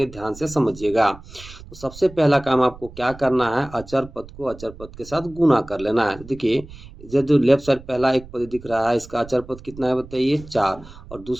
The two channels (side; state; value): right; noise; rumble, 18 dB below the sound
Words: ध्यान से समझिएगा। तो सबसे पहला काम आपको क्या करना है, अचर पद को अचर पद के साथ गुना कर लेना है। देखिए, जो लेफ्ट साइड पहला एक पद दिख रहा है, इसका अचर पद कितना है बताइए 4। और